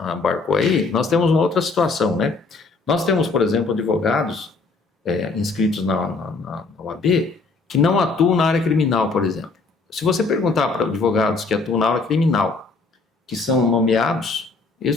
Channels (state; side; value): quieter; right; 4.0 dB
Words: aí, nós temos uma outra situação, né? Nós temos, por exemplo, advogados inscritos na OAB que não atuam na área criminal, por exemplo. Se você perguntar para advogados que atuam na área criminal, que são nomeados,